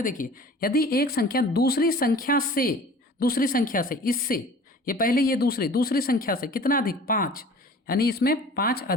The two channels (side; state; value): both; normal; correlation 0.44